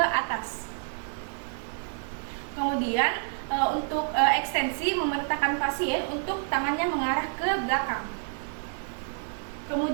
Kemudian untuk ekstensi, memerintahkan pasien untuk tangannya mengarah ke belakang.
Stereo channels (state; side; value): silent; left; 59 dB below the other